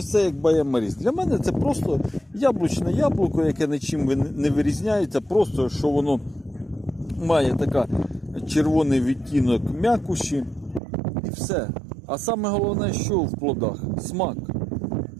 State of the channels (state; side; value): drops out; left; at 10.8 s